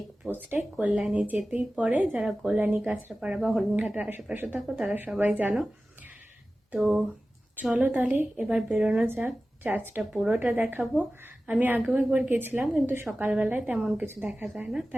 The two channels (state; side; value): normal; both; correlation 0.96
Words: কল্যাণী যেতেই পড়ে। যারা কল্যাণী, কাঁচরাপাড়া বা হরিণঘাটার আশেপাশে থাকো তারা সবাই জানো। তো চলো তাহলে এবার বেরোনো যাক। চার্চটা পুরোটা দেখাবো। আমি আগেও একবার গেছিলাম, কিন্তু সকালবেলায় তেমন কিছু দেখা যায় না,